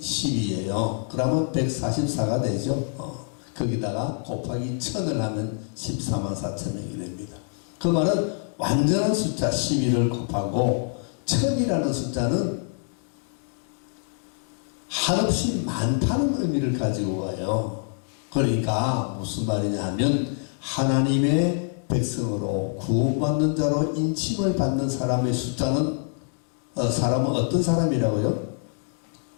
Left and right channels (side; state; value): right; silent; 61 dB below the other